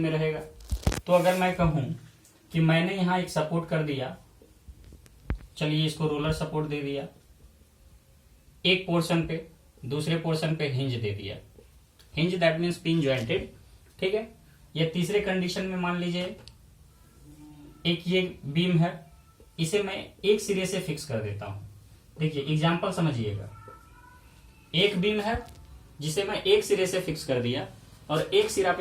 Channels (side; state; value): both; identical; correlation 1.00